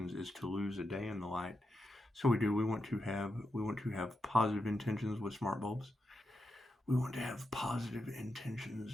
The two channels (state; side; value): normal; both; correlation 0.86